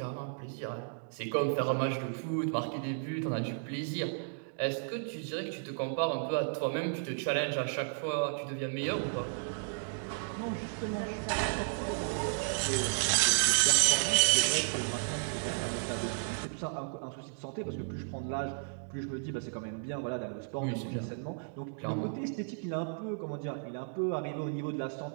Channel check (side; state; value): left; silent; digital silence